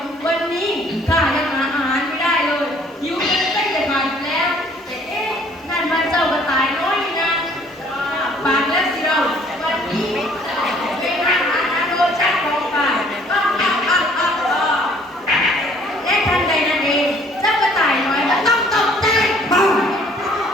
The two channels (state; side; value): normal; both; correlation 0.59